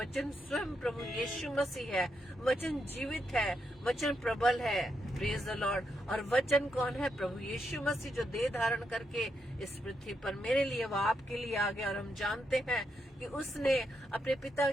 स्वयं प्रभु यीशु मसीह है, वचन जीवित है, वचन प्रबल है। Praise the Lord. और वचन कौन है? प्रभु यीशु मसीह, जो देह धारण करके इस पृथ्वी पर मेरे लिए व आपके लिए आ गया। और हम जानते हैं कि उसने अपने पिता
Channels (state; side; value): normal; both; correlation 0.81